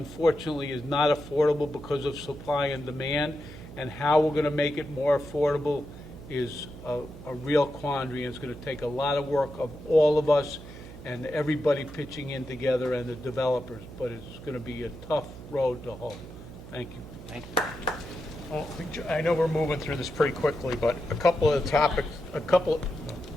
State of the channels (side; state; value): right; noise; hum, 15 dB below the sound